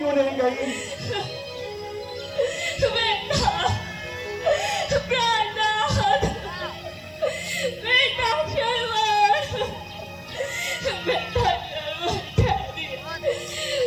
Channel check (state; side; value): identical; both; correlation 1.00